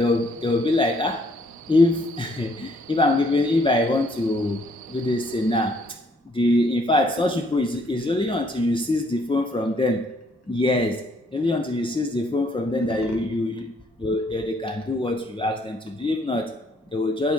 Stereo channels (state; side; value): normal; both; correlation 0.66